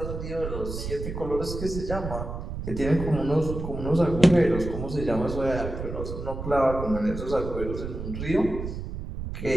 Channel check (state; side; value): noise; right; rumble, 6 dB below the sound